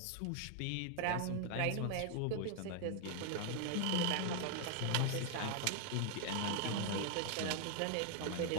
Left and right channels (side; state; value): both; different; correlation 0.00